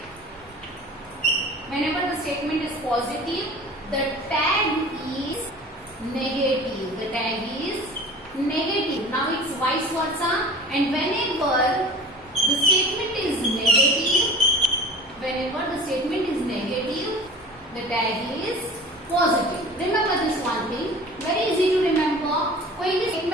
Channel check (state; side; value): noise; right; rumble, 28 dB below the sound